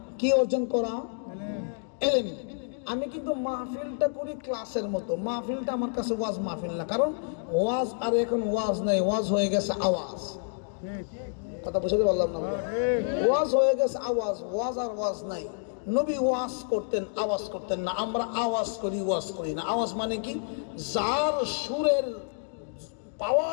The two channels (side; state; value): right; silent; digital silence